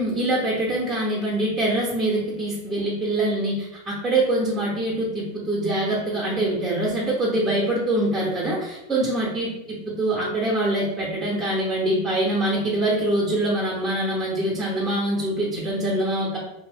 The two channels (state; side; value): normal; both; correlation 0.33